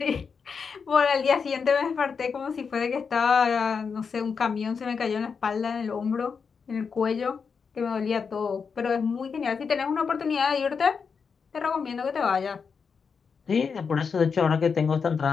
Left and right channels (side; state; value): right; quieter; 5.8 dB